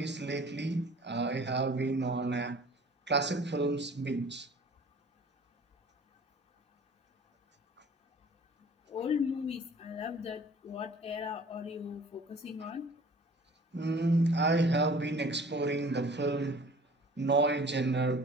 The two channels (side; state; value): both; normal; correlation 0.48